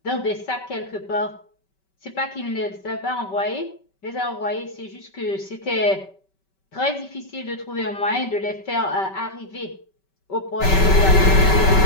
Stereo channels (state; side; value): late; right; 5.2 ms